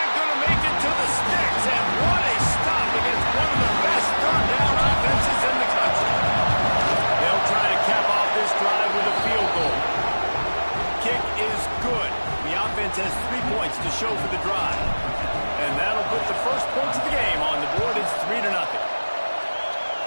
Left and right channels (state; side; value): inverted; both; correlation -1.00